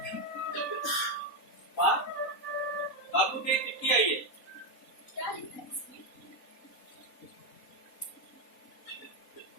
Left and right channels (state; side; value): late; right; 3.9 ms